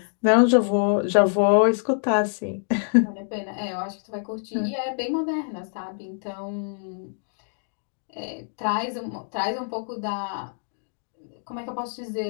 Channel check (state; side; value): silent; right; digital silence